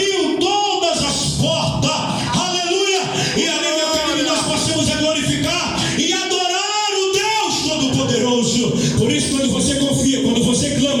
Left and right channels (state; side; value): identical; both; correlation 1.00